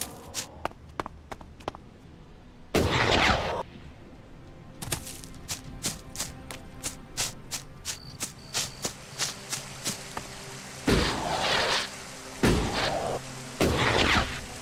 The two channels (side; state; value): both; identical; correlation 1.00